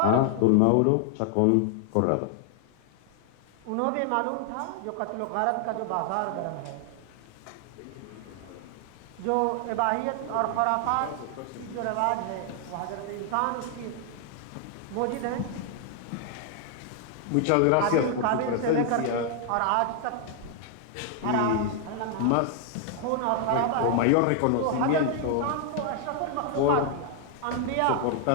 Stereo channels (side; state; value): both; different; correlation 0.00